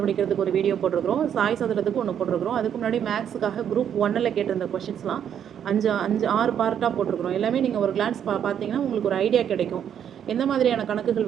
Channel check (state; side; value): quieter; left; 9.0 dB